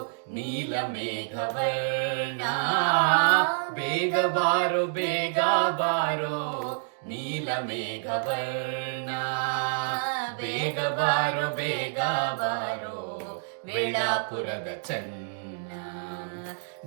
ನೀಲ ಮೇಘವರ್ಣ, ಬೇಗ ಬಾರೋ ಬೇಗ ಬಾರೋ ನೀಲ ಮೇಘವರ್ಣ, ಬೇಗ ಬಾರೋ ಬೇಗ ಬಾರೋ ವೇಳಾಪುರದ ಚೆನ್ನ,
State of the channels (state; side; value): silent; left; digital silence